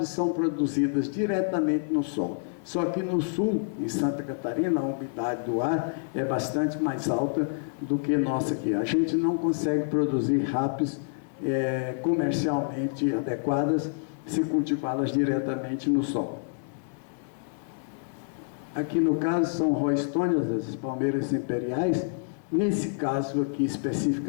são produzidas diretamente no sol. Só que no sul, em Santa Catarina, a umidade do ar é bastante mais alta do que nossa aqui. A gente não consegue produzir rapis comercialmente adequadas se cultivá-las diretamente no sol. Aqui no caso são roystonias, as palmeiras imperiais. Nesse caso aqui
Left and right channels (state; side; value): silent; right; 56 dB below the other